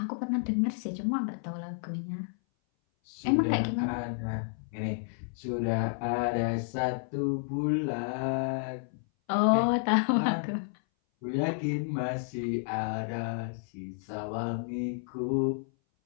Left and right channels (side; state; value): right; silent; 57 dB below the other